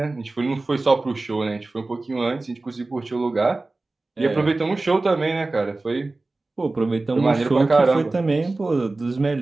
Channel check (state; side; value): quieter; left; 3.2 dB